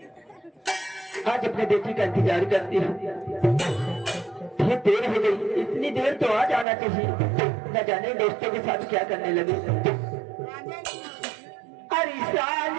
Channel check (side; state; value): left; drops out; at 6.7 s